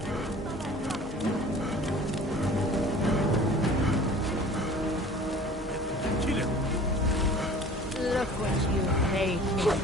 look what you made me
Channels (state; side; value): normal; both; correlation 0.45